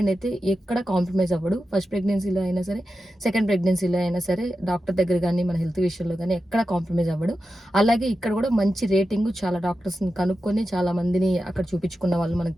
అయితే ఎక్కడ కాంప్రమైజ్ అవ్వడు. ఫస్ట్ ప్రెగ్నెన్సీలో అయినా సరే, సెకండ్ ప్రెగ్నెన్సీలో అయినా సరే, డాక్టర్ దగ్గర కానీ మన హెల్త్ విషయంలో కానీ ఎక్కడ కాంప్రమైజ్ అవ్వడు. అలాగే ఇక్కడ కూడా మంచి రేటింగ్, చాలా డాక్టర్స్ని కనుక్కొని, చాలా మందిని అక్కడ చూపించుకున్న వాళ్ళు, మనకు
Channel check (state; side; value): normal; both; correlation 0.91